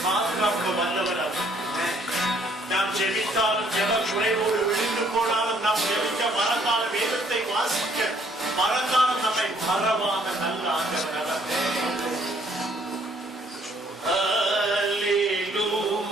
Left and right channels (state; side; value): normal; both; correlation 0.64